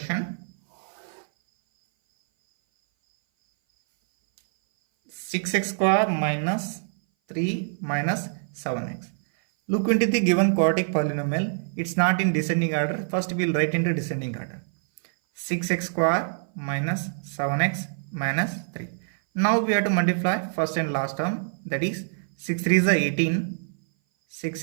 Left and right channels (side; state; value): left; silent; 58 dB below the other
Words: 6x square minus 3 minus 7x. Look into the given quadratic polynomial. It's not in descending order. First we'll write into descending order. 6x square minus 7x minus 3. Now we have to multiply first and last term. That is 6 3 is 18.